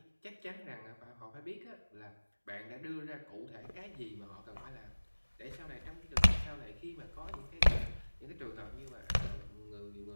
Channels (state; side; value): inverted; both; correlation -1.00